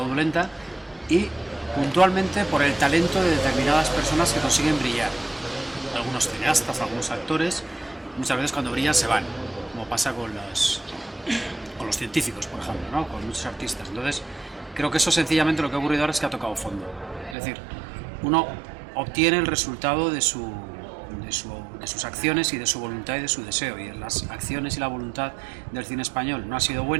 y puntualmente por el talento de determinadas personas que consiguen brillar. Algunos cineastas, algunos actores, muchas veces cuando brillan se van, como pasa con los científicos, por ejemplo, ¿no? Con muchos artistas. Entonces, creo que eso sencillamente lo que ha ocurrido ahora es que ha tocado fondo. Es decir, uno obtiene el resultado de sus acciones y de su voluntad y de su deseo, y las acciones y la voluntad del cine español no ha sido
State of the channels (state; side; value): drops out; left; at 17.4 s